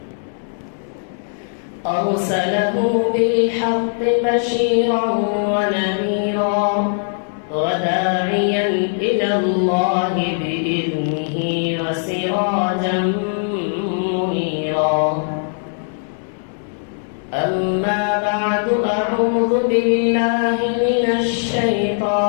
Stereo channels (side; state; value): right; silent; digital silence